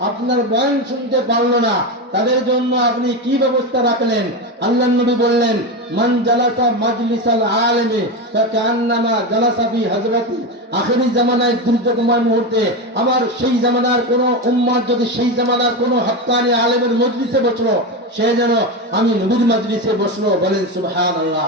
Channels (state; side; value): normal; both; correlation 0.17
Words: আপনার বয়ান শুনতে পারলো না, তাদের জন্য আপনি কি ব্যবস্থা রাখলেন? আল্লাহর নবী বললেন, মান জালাসা মাজলিসাল আলিমি ফাকান্নামা জালাসা ফি হযরতি। আখেরি জামানায় দুর্যোগময় মুহূর্তে আমার সেই জামানার কোন উম্মত যদি সেই জামানার কোন হক্কানি আলেমের মজলিসে বসলো, সে যেন আমি নবীর মজলিসে বসলো। বলেন সুবহানাল্লাহ।